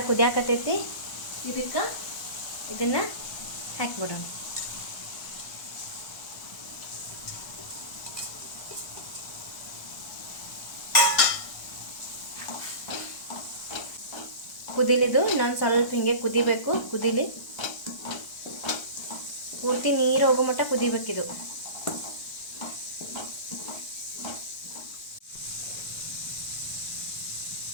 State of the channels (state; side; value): late; right; 1.2 ms